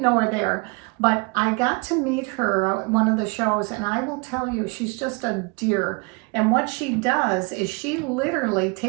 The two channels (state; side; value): quieter; left; 30.1 dB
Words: know her there, but I got to meet her at one of the shows, and I will tell you, she's just a dear. And what she does is she literally